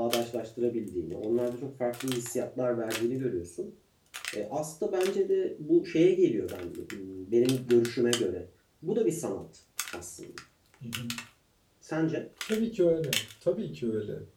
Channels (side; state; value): both; identical; correlation 1.00